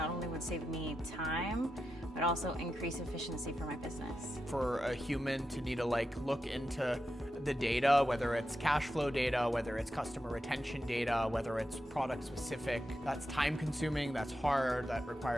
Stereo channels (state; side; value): normal; both; correlation 0.88